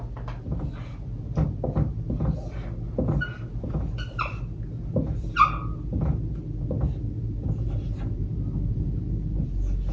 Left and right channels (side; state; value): both; identical; correlation 1.00